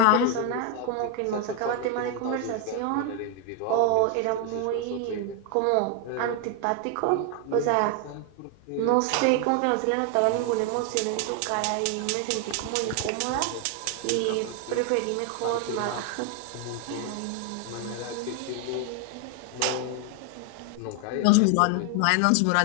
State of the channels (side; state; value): both; different; correlation 0.01